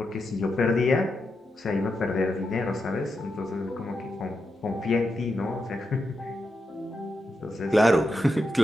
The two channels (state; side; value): normal; both; correlation 0.86